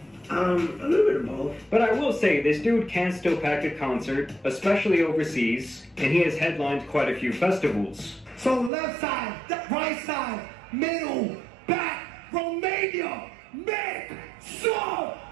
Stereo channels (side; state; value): left; drops out; at 8.7 s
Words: A little bit of both. But I will say, this dude can still pack a concert, especially overseas, and he has headlined quite a few festivals. So left side, right side, middle, back, Romania, make some